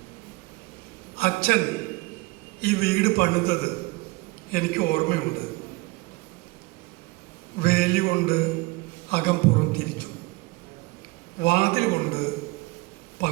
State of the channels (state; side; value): quieter; left; 23.6 dB